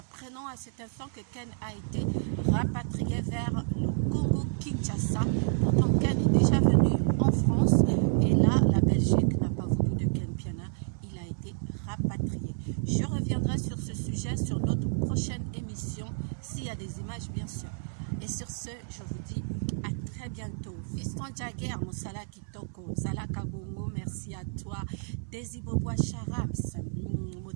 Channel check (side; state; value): left; silent; 58 dB below the other